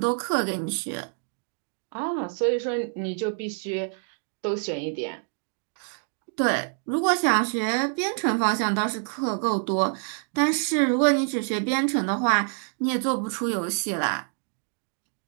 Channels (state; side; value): silent; left; 58 dB below the other